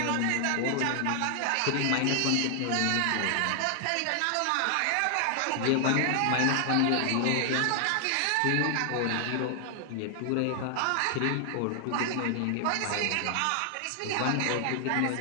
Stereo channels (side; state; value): both; different; correlation 0.00